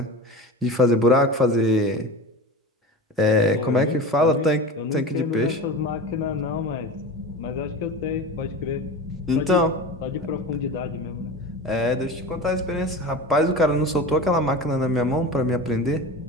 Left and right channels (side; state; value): both; normal; correlation 0.30